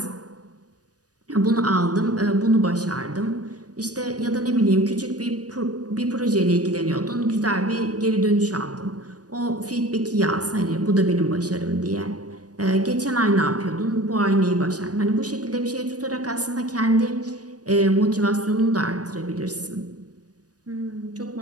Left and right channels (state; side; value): late; left; 0.68 ms